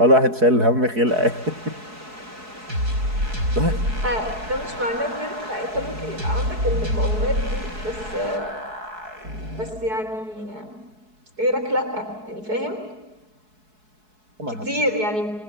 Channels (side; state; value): left; late; 4.7 ms